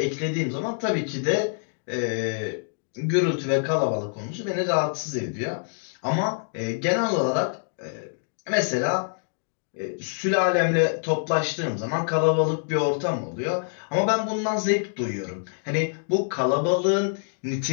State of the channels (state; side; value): silent; right; digital silence